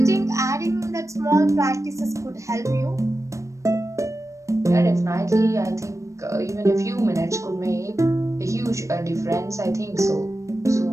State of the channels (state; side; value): late; left; 0.15 ms